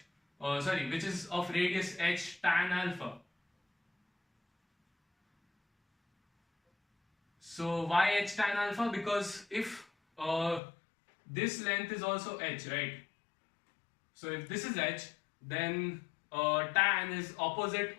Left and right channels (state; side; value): drops out; right; at 10.6 s